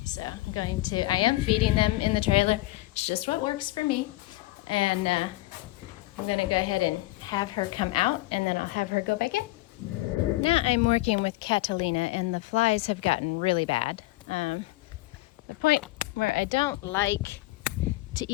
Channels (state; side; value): quieter; right; 19.2 dB